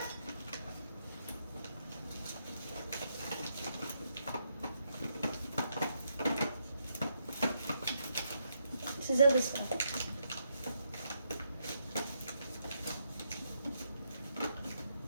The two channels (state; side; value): inverted; both; correlation -0.79